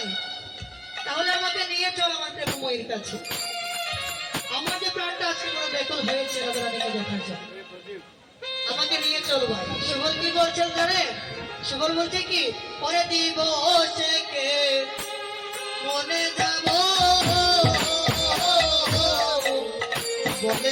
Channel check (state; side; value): identical; both; correlation 1.00